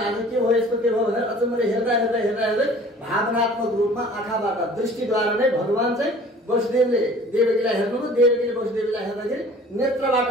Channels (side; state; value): both; normal; correlation 0.48